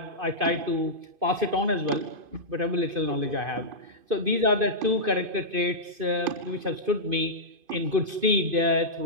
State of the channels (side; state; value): left; late; 2.5 ms